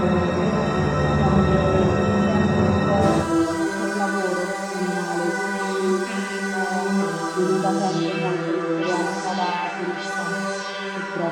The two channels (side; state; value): both; identical; correlation 1.00